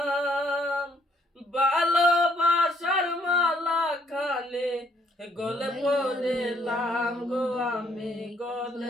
ভালোবাসার মালা খানে গলে পড়িলাম গো, আমি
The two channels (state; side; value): normal; both; correlation 0.68